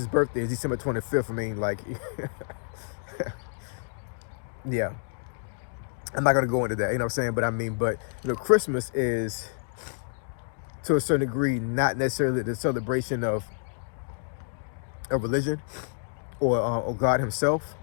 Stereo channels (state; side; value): silent; right; digital silence